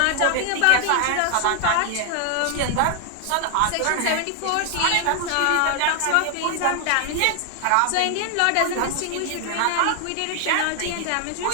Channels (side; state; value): both; different; correlation 0.00